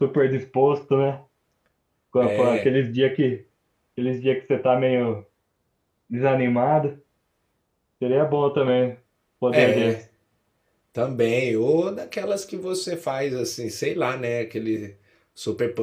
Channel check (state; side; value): identical; both; correlation 1.00